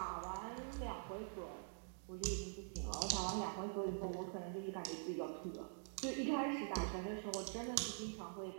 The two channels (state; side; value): silent; left; digital silence